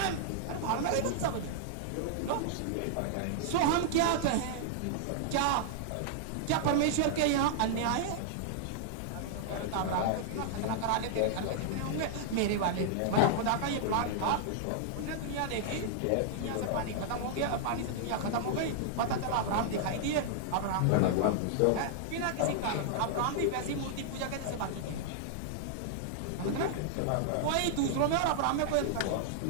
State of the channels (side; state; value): both; different; correlation -0.01